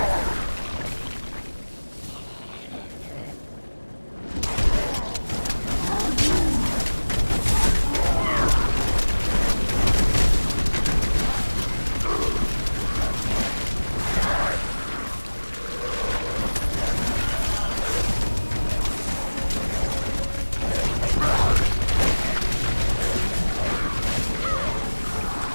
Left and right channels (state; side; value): inverted; both; correlation -1.00